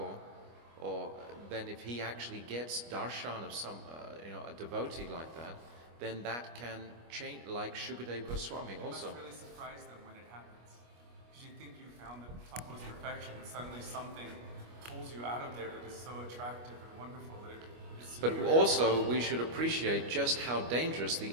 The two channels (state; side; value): late; left; 25 ms